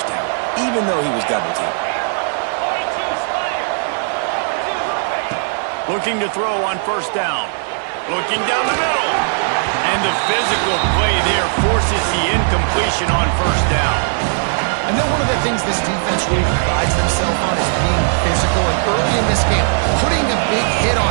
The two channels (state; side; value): silent; left; digital silence